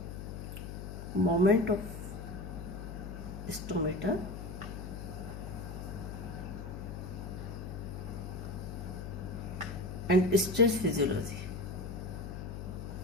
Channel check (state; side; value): noise; left; hum, 8 dB below the sound